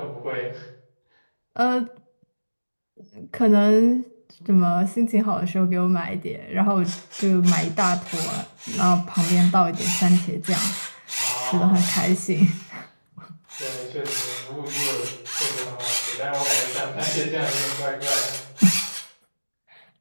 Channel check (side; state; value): both; inverted; correlation -1.00